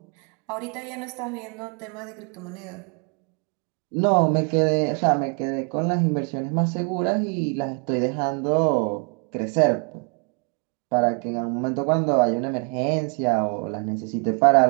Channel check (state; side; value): quieter; left; 37.8 dB